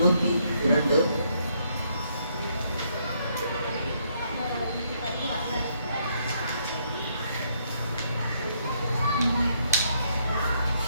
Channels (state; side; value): inverted; both; correlation -0.72